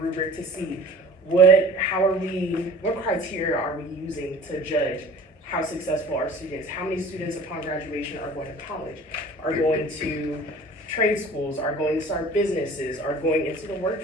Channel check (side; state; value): both; normal; correlation 0.44